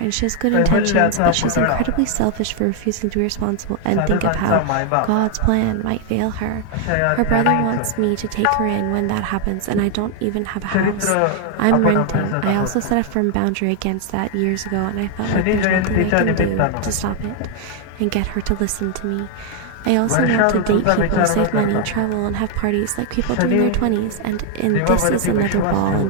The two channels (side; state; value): both; different; correlation 0.00